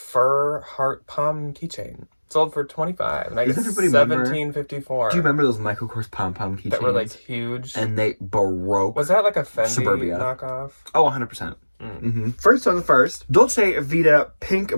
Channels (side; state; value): both; inverted; correlation -1.00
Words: heart palm keychain. Sold for $25, and I got $17.54. Do you remember those Michael Kors pom-pom keychains? That were like huge. And they broke. Was that like a Fendi Suburbia knockoff? Oh, 100%. Mm-hmm. First on the first, Dolce Vita pink